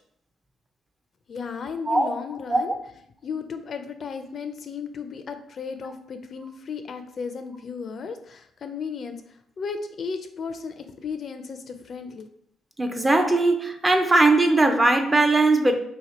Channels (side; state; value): both; normal; correlation 0.87